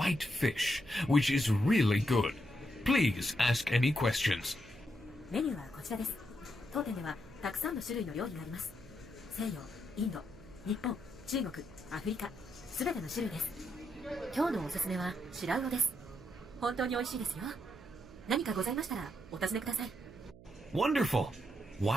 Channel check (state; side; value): noise; right; hum, 20 dB below the sound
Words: fish, which is really good. Please ask any questions. メニューはこちらです。当店ではたくさんの種類の料理があります。西洋、インド、日本、中国、アフリカ、すべての種類です。今日のおすすめは白魚です。本当に美味しいですよ。何かございましたらお尋ねください。 Wonderful.